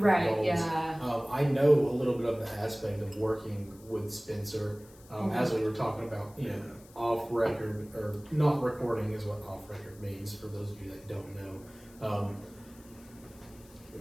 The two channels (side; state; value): left; noise; hiss, 25 dB below the sound